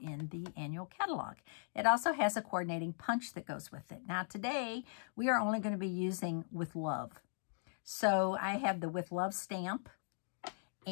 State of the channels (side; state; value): right; silent; digital silence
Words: the annual catalog. It also has a coordinating punch that goes with it. Now today, we are only going to be using With Love. So I have the With Love stamp.